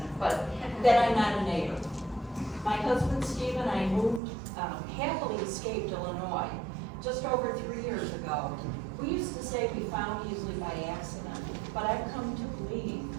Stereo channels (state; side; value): drops out; left; at 4.2 s